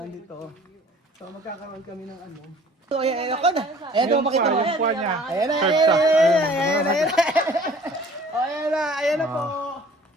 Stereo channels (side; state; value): both; normal; correlation 0.51